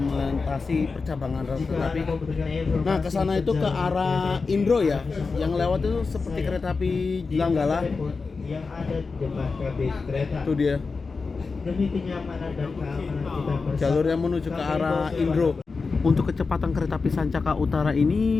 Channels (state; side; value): quieter; right; 4.4 dB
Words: melintasi percabangan rel Jika kereta api. Anda membutuhkan informasi Nah, ke sana itu ke perjalanan arah kereta api, Indro ya. Yang lewat itu seperti Saya kereta api di Langgala. telepon yang ada di depan kabin kereta. Itu dia. Demi kenyamanan dan keamanan kita bersama. Jalur yang menuju ke arah Indro. Untuk kecepatan kereta api Sancaka Utara ini